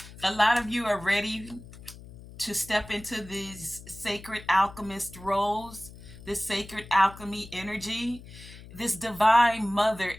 A lot of you are ready to step into these sacred alchemist roles, this sacred alchemy energy, this divine mother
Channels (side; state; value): left; noise; hum, 17 dB below the sound